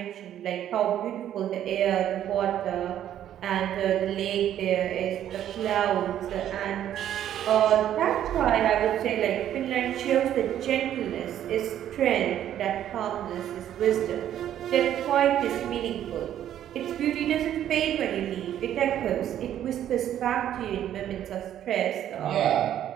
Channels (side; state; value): left; quieter; 11.0 dB